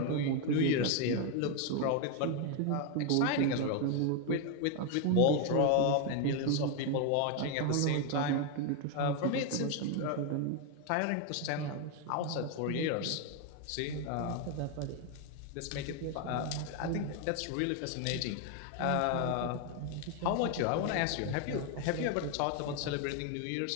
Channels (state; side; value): different; both; correlation 0.01